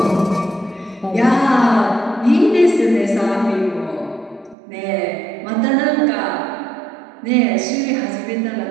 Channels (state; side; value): drops out; left; at 4.5 s